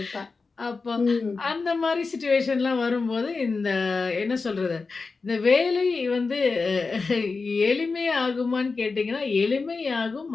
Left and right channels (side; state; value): right; quieter; 4.3 dB